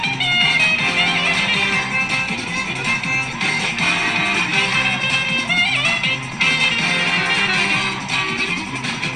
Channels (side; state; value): both; identical; correlation 1.00